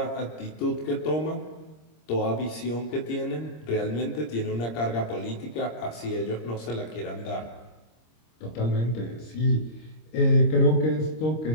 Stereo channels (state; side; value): late; right; 26 ms